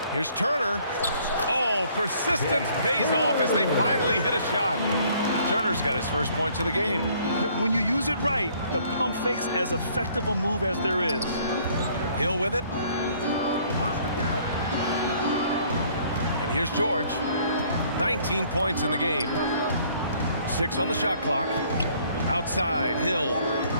Here's Turner. Oh, persistence pays off as they finally hit a shot. Turner's got his first points of the game. When you use it right, the pump fake's as effective a move as there is. Hill with it. And here's George. 19 points in the game. 6 on the shot clock. Outside, Hill.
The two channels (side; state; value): both; inverted; correlation -0.60